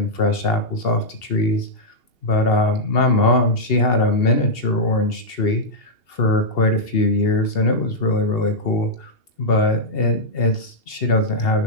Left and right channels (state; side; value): late; right; 2.8 ms